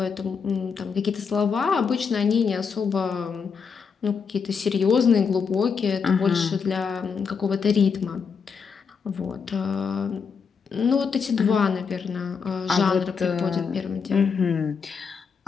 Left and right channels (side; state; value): right; quieter; 5.9 dB